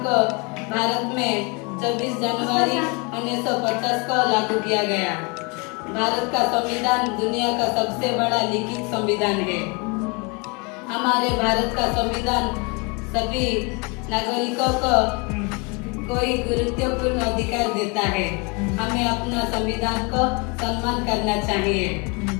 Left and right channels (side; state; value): right; quieter; 30.7 dB